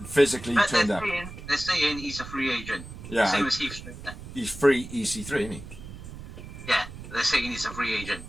physically turned up. They're saying he's a free agent. Yeah. Same as Heath Slater. He's free EC3, isn't he? Yeah, they're saying he's a free agent.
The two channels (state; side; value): noise; right; rumble, 12 dB below the sound